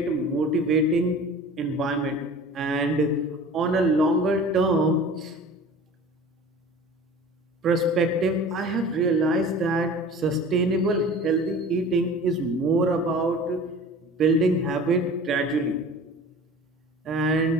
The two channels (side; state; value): both; normal; correlation 0.41